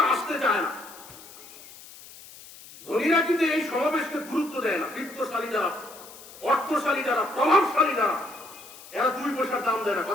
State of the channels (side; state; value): left; noise; hiss, 18 dB below the sound